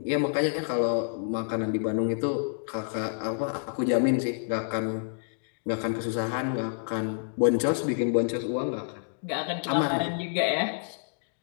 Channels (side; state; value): right; silent; digital silence